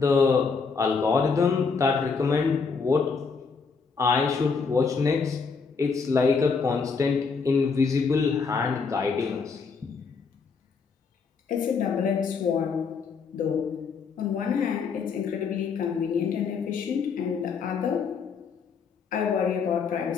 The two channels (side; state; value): right; quieter; 5.2 dB